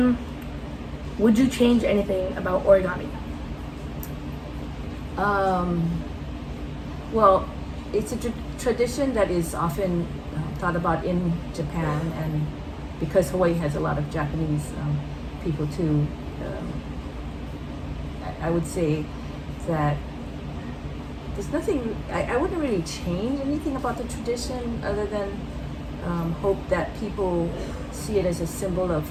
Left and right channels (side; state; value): both; identical; correlation 1.00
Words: would you change anything about origami? Well, it's a tradition that is often thought about in Japan, and because Hawaii has a lot of Japanese people too, I would say that there's nothing, I wouldn't really change anything about the tradition, other than hope that people see it as a symbol of